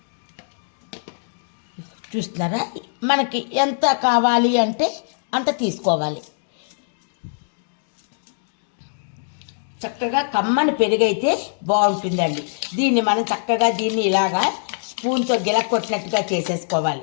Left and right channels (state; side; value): silent; right; digital silence